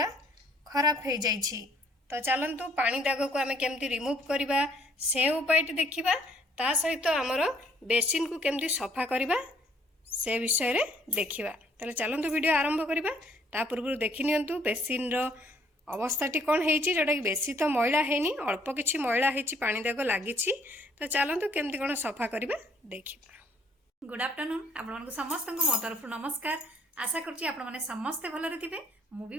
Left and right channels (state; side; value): normal; both; correlation 0.63